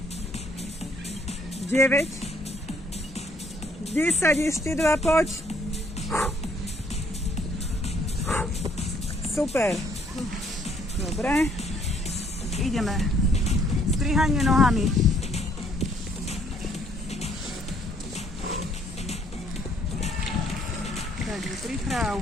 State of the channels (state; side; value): normal; both; correlation 0.64